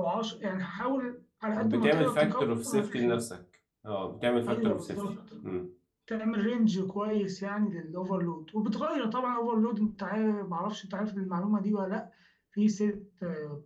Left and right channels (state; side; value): identical; both; correlation 1.00